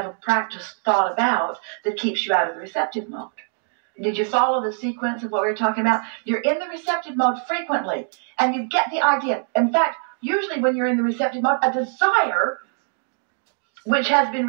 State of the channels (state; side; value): silent; left; 64 dB below the other